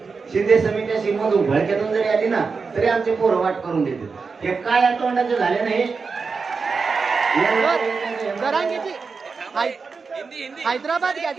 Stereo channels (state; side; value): quieter; left; 4.9 dB